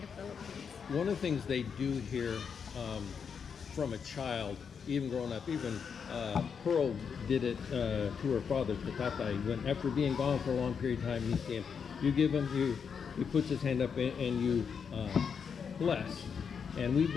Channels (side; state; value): right; quieter; 6.5 dB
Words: the Philippines. One of the things they do here, from a child, even growing up, even Pearl did it to her father, to Tatay, when after being gone for a long period of time, he came, you give him, he puts his hand up and you bless. And we've